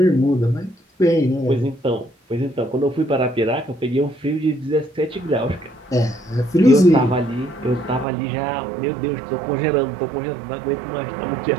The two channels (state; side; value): drops out; left; at 8.1 s